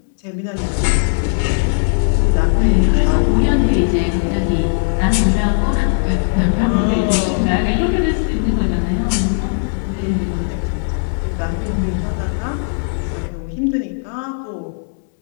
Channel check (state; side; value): silent; right; digital silence